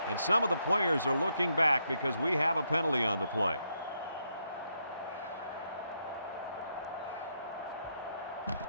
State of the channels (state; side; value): inverted; both; correlation -0.79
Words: And some of the players are looking back because we have a penalty on the play.